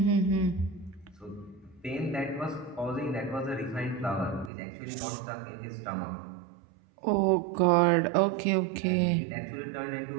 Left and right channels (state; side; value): drops out; left; at 4.5 s